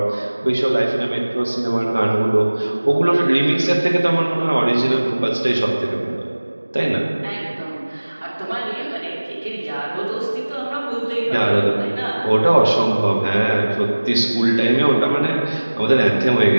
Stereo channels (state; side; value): inverted; both; correlation -1.00